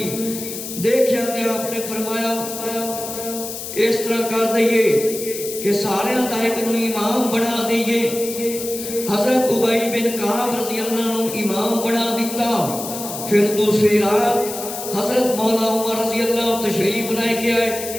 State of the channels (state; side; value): noise; left; hiss, 8 dB below the sound